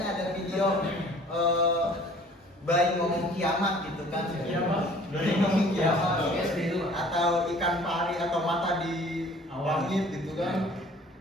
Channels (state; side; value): normal; both; correlation 0.52